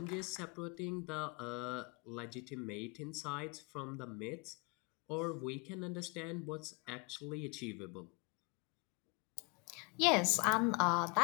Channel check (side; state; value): right; quieter; 31.4 dB